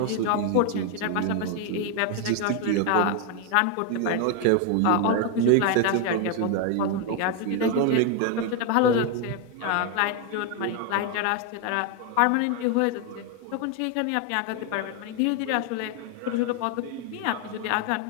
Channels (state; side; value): different; both; correlation 0.01